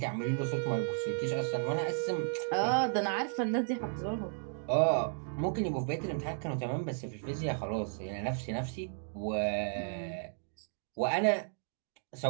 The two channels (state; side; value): silent; left; digital silence